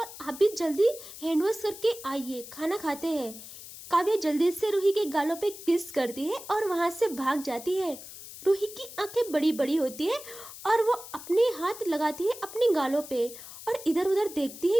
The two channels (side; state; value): left; noise; hiss, 14 dB below the sound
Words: आप भी जल्दी हैंड वॉश करके आइए खाना खाते हैं। काव्या जल्दी से रूही के गालों पे किस करती है और वहाँ से भाग जाती है। रूही की आंखें बड़ी बड़ी होती है और वो अपने हाथ लगाती है अपने गालों पे और इधर उधर देखती है